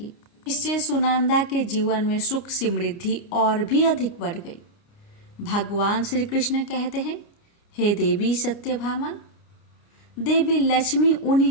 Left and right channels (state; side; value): late; right; 29 ms